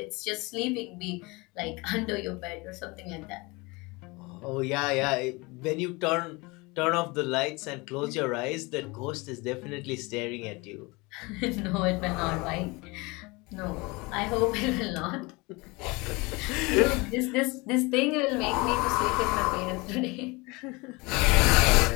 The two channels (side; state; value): right; quieter; 25.2 dB